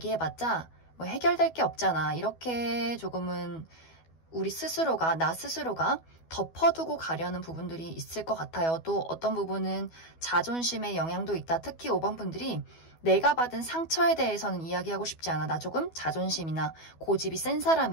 뭐 해결될 게 없잖아, 이렇게 조금은 우리 스스로가, 나 스스로가 덮어두고 가려는 부분들이 있을 것 같아요. 또 어떤 부분은 자존심의 영향도 있다. 특히 5번 분들이 내가 받은 상처에 대해서는 이야기하고 싶지 않아. 나 조금 자존심이나 고집이 센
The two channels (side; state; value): right; late; 12 ms